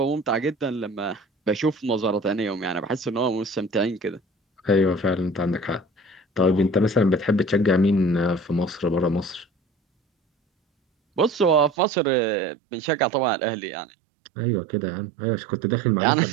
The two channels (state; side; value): drops out; left; at 11.8 s